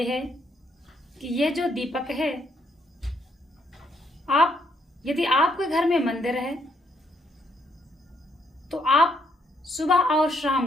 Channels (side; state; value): both; normal; correlation 0.72